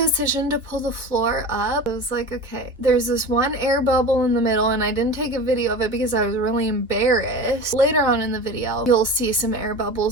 to pull the floor up, I was like, okay, there's this one air bubble in the middle, and I didn't take a video of it because I was really embarrassed. Later on in the video, you'll see some air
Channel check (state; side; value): normal; both; correlation 0.33